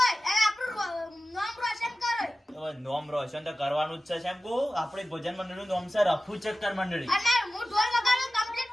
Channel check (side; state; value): both; normal; correlation 0.95